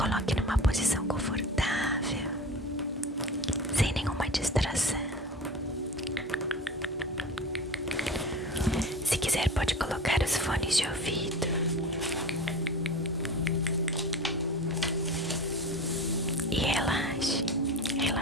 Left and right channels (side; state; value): both; normal; correlation 0.33